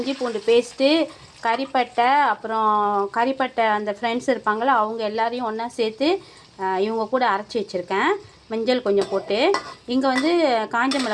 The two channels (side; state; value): both; identical; correlation 1.00